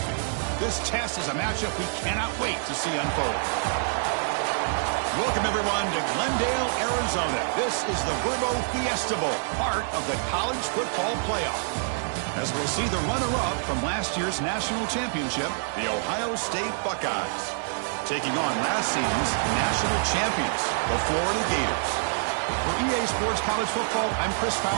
This test is a matchup we cannot wait to see unfold. Welcome, everyone, to Glendale, Arizona. This is the Vrbo Fiesta Bowl, part of the college football playoff. As we'll see the runner-up from last year's national championship, the Ohio State Buckeyes, taking on last season's national champions, the Florida Gators. For EA Sports College Football, I'm Chris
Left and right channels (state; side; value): silent; left; digital silence